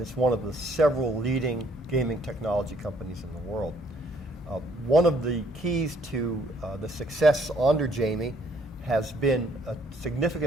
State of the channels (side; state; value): both; normal; correlation 0.65